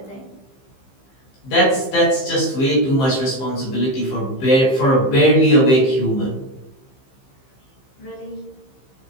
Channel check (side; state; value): right; late; 15 ms